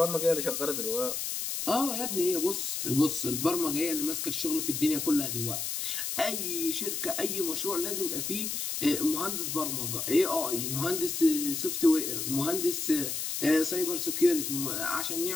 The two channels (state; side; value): noise; left; hiss, 2 dB below the sound